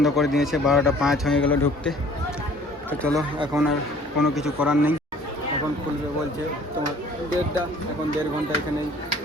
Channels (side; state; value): both; normal; correlation 0.53